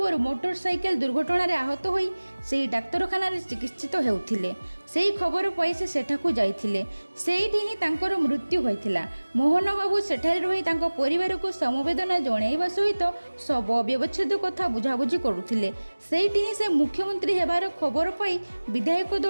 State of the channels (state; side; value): inverted; both; correlation -1.00